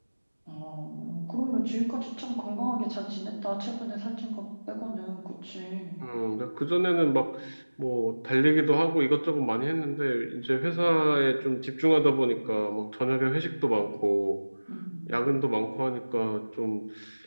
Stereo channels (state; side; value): inverted; both; correlation -1.00